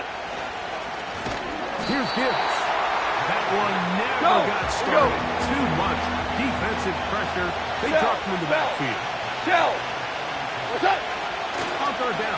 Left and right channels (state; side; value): identical; both; correlation 1.00